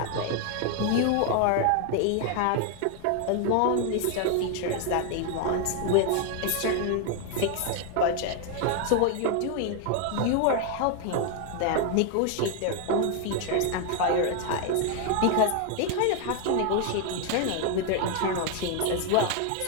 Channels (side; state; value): both; different; correlation 0.00